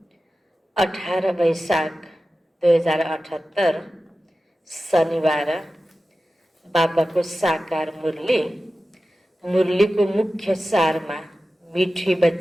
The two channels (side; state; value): both; normal; correlation 0.94